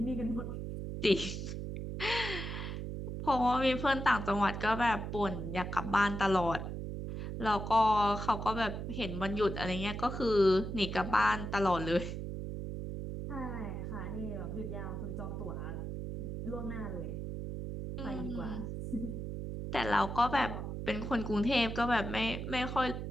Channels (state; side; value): noise; right; hum, 5 dB below the sound